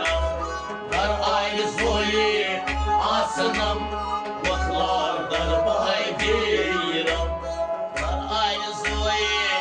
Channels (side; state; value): both; identical; correlation 1.00